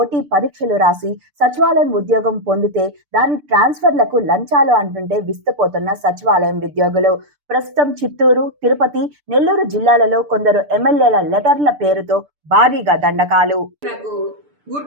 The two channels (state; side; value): late; left; 6.8 ms